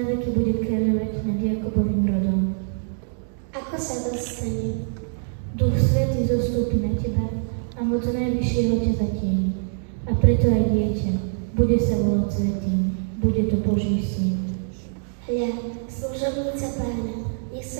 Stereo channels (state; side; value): silent; left; digital silence